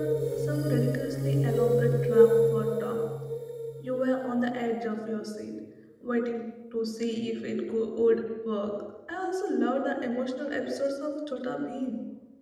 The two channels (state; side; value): identical; both; correlation 1.00